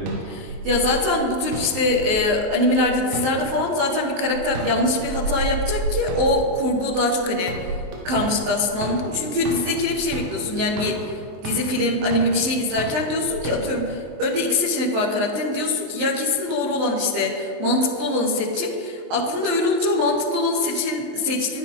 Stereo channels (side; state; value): left; late; 24 ms